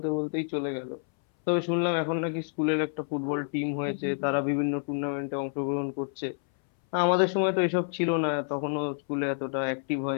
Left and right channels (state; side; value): silent; right; 59 dB below the other